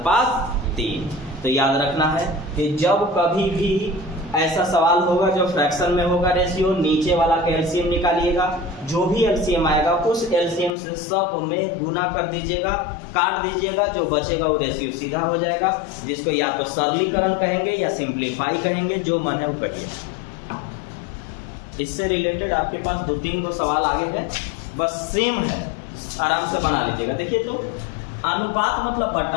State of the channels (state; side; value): drops out; right; at 10.7 s